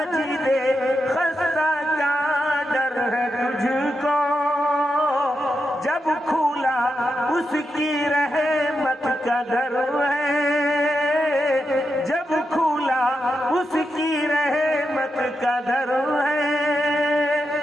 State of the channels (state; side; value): normal; both; correlation 0.86